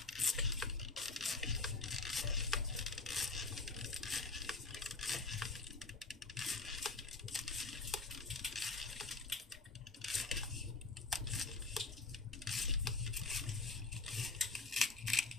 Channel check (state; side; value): quieter; right; 3.7 dB